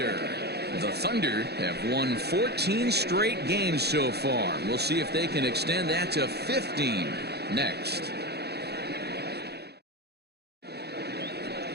The Thunder have won 14 straight games so far. We'll see if they can extend that to 15 next.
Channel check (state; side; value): late; left; 0.48 ms